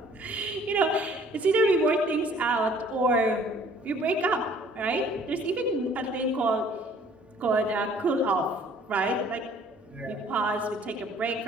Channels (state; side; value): normal; both; correlation 0.55